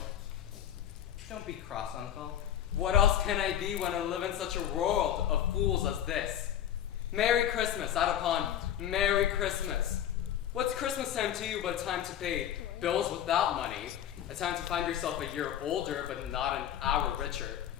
Don't be cross, Uncle. What else can I be when I live in such a world of fools as this? Merry Christmas, out upon Merry Christmas. What's Christmas time to you but a time to pay bills without money? A time to find yourself a year older but not an hour richer?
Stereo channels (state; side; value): quieter; right; 10.5 dB